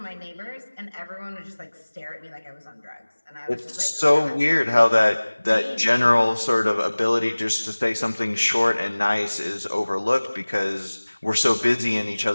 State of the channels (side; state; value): both; inverted; correlation -1.00